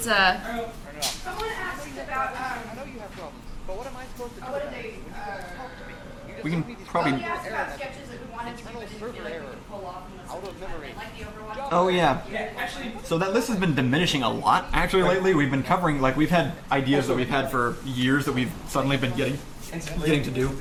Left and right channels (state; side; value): identical; both; correlation 1.00